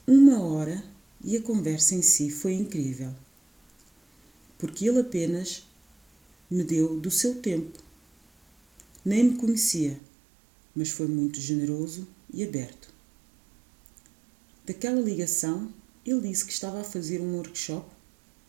1 hora e a conversa em si foi incrível. Porque ele apenas me deu do seu tempo. Nem me conhecia, mas foi muito generoso e aberto. Daquela ligação, ele disse que estava a fazer um workshop,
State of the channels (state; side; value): drops out; left; at 10.0 s